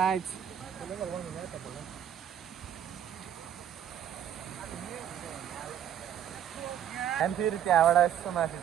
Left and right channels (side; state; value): left; quieter; 9.8 dB